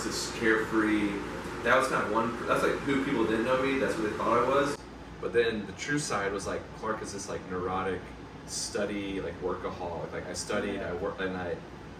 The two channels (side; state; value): both; identical; correlation 1.00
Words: this carefree. That was kind of that's like who people didn't know me. That's what they thought I was. But then the true side was like, Clark is this like neurotic, study, like workaholic. Like I studied, I worked, and I